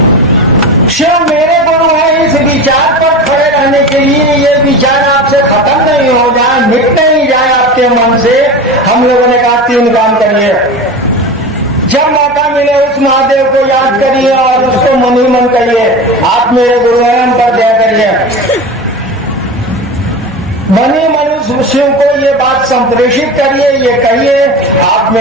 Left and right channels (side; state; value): both; normal; correlation 0.28